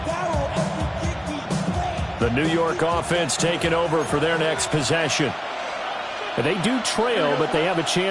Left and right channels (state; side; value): identical; both; correlation 1.00